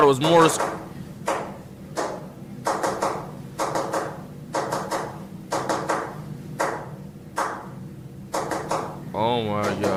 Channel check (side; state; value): both; identical; correlation 1.00